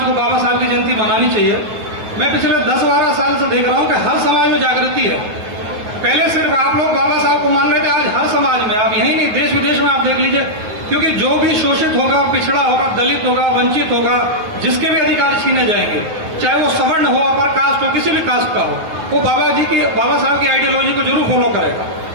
को बाबा साहब की जयंती मनानी चाहिए। मैं पिछले 10-12 साल से देख रहा हूं कि हर समाज में जागृति है। पहले सिर्फ आप लोग बाबा साहब को मान रहे थे, आज हर समाज में, आप यही नहीं, देश विदेश में आप देख लीजिए, क्योंकि जो भी शोषित होगा, पिछड़ा होगा, दलित होगा, वंचित होगा, जिसके भी अधिकार छीने जाएंगे, चाहे वो सवर्ण हो, अपर कास्ट हो, किसी भी कास्ट का हो, वो बाबा साहब की आइडियोलॉजी को जरूर फॉलो करेगा।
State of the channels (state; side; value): late; left; 9.4 ms